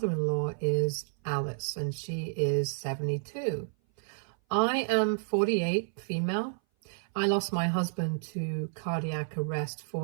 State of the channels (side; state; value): left; silent; 56 dB below the other